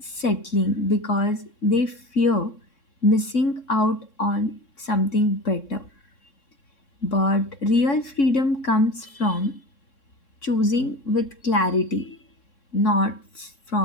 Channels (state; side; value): late; right; 3.6 ms